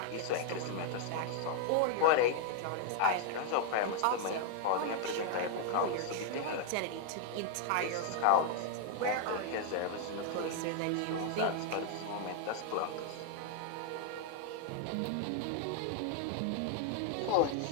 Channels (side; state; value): both; different; correlation 0.00